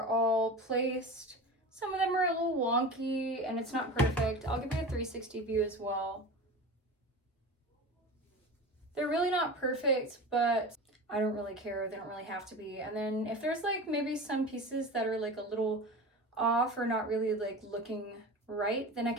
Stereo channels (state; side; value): normal; both; correlation 0.31